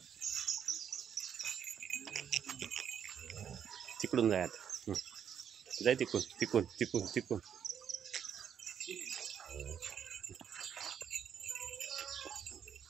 तिकडून जाय आता जाय तिकून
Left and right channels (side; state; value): left; quieter; 8.4 dB